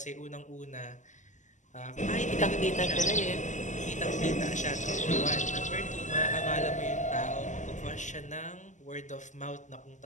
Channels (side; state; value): right; late; 0.35 ms